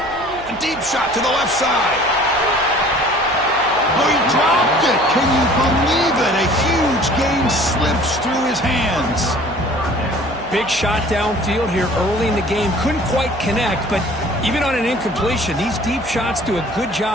A deep shot to the left side. Oh, he dropped it. Can you believe it? A huge gain slips through his hands. Big shot downfield here early in the game. Couldn't quite connect, but even on an incompletion, these deep shots do a good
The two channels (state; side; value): noise; right; hum, 19 dB below the sound